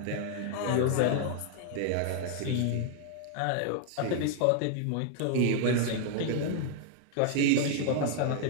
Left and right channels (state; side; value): different; both; correlation 0.00